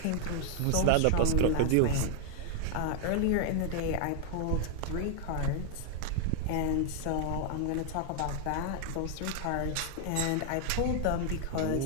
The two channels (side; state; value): both; different; correlation 0.00